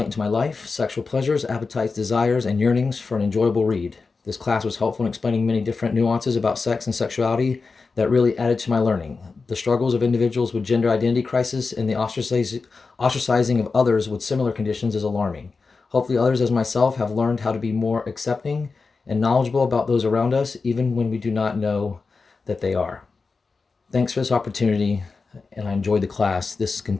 into my life, sexual pleasures, appetites, desires, and yearnings for an enjoyable read. This class was helpful in explaining many different nuances about sex and sexuality that really added to my learning. The struggles of individuals with gender identity crisis and the ostracizing of others with similar conditions is alarming. Hopefully others as myself have learned how to be more accepting and knowledgeable about those around us, even when we do not know that they are. Thanks for this opportunity, and I enjoyed the class. This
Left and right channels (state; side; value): quieter; right; 4.4 dB